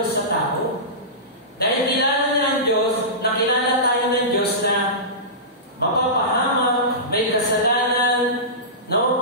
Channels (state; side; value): normal; both; correlation -0.20